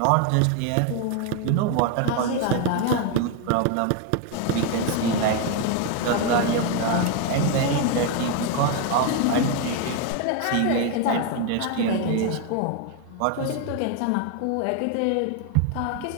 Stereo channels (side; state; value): both; different; correlation 0.01